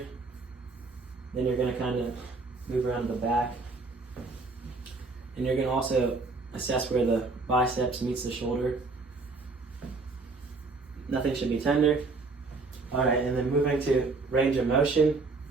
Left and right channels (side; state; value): left; quieter; 3.8 dB